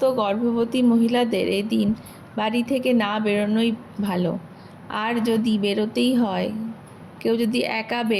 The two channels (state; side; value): identical; both; correlation 1.00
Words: গর্ভবতী মহিলাদের এই দিন বাড়ি থেকে না বেরোনোই ভালো। আর যদি বেরোতেই হয়, কেউ যদি একা